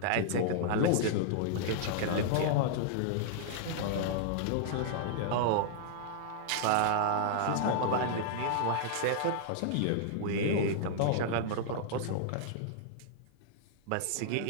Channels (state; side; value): different; both; correlation -0.01